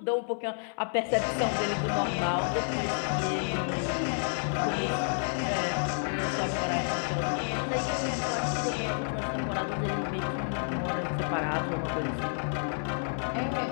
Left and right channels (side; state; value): right; silent; digital silence